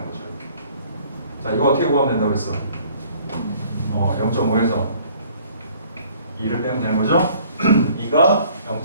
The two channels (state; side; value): inverted; both; correlation -0.56